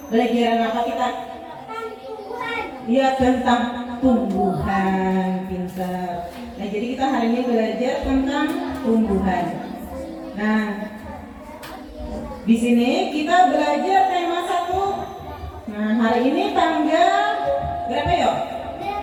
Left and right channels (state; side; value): identical; both; correlation 1.00